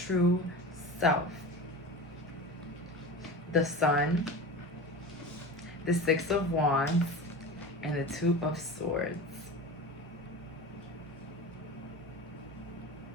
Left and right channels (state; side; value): normal; both; correlation 0.31